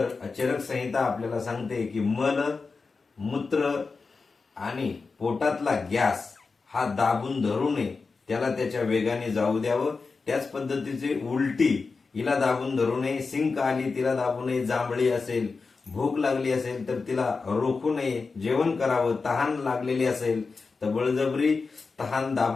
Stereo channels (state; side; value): quieter; right; 4.4 dB